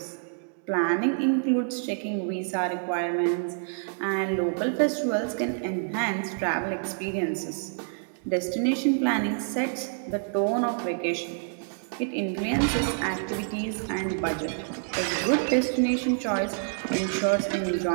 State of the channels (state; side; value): silent; left; digital silence